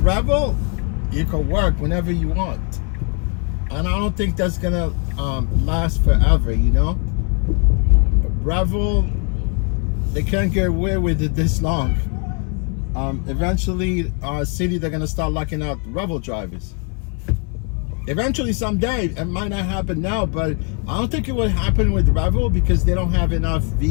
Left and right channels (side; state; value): right; quieter; 36.4 dB